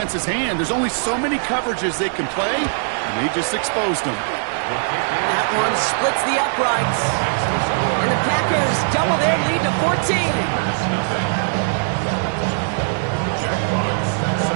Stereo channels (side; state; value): left; silent; digital silence